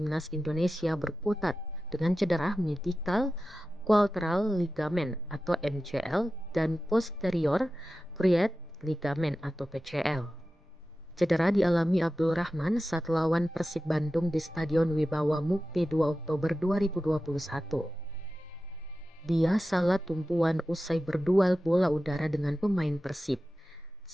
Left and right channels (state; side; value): normal; both; correlation 0.94